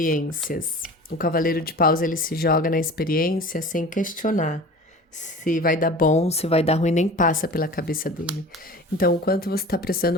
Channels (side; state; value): both; normal; correlation 0.39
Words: O Cavaleiro de Paus, ele se joga na experiência sem questionar, se vai dar bom, se vai dar ruim, nem passa pela cabeça dele. Então, o quanto você está